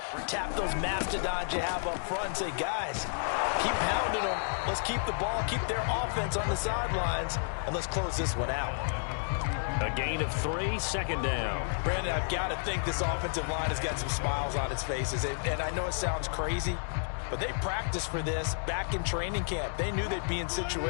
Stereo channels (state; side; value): silent; right; digital silence